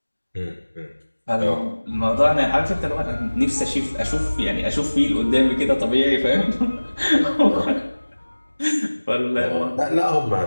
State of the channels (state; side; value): inverted; both; correlation -1.00